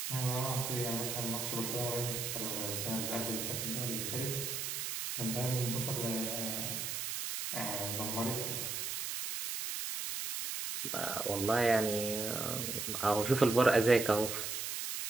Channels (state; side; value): noise; right; hiss, 3 dB below the sound